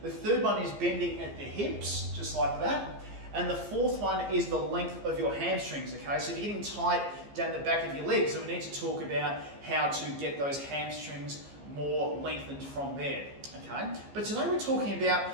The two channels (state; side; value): late; left; 15 ms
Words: The third one is bending at the hips, just like that. And the fourth one is the length of your hamstrings, okay? So if you're getting tight down the back of your legs, so we need to talk about how to get those hamstrings more lengthened from there, okay? But today we're talking